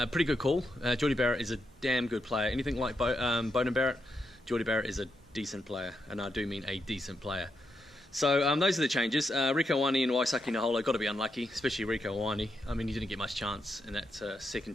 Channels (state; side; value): normal; both; correlation 0.82